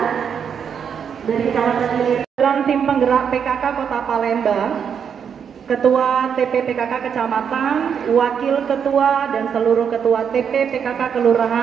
dari Kecamatan Ilir. Dalam tim penggerak PKK Kota Palembang, Ketua TP PKK Kecamatan, Wakil Ketua dan seluruh Ketua TP PKK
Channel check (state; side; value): quieter; left; 7.4 dB